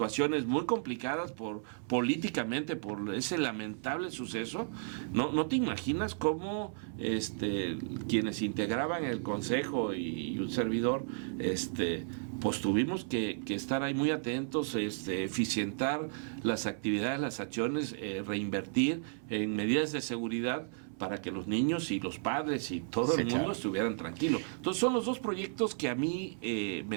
muy complicadas políticamente por ese lamentable suceso. No te imaginas cómo quienes integraban el consejo y un servidor pues tuvimos que estar ahí muy atentos, eficientar las actividades, las acciones, reinvertir en medidas de seguridad para que los niños y los padres y todo el mundo estuvieran tranquilos. Entonces son los dos proyectos que a mí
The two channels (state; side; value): silent; left; 55 dB below the other